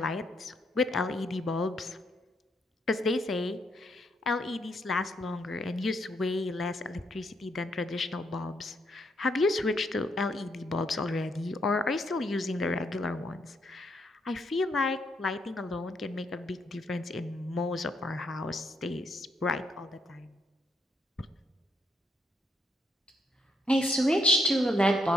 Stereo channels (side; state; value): both; normal; correlation 0.75